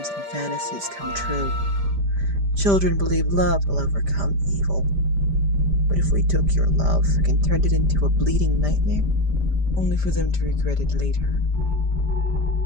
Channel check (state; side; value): late; left; 5.0 ms